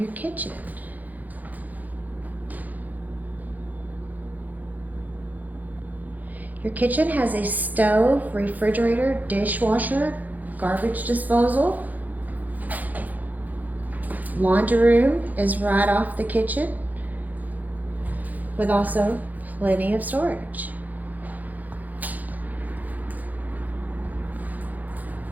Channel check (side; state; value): left; late; 0.081 ms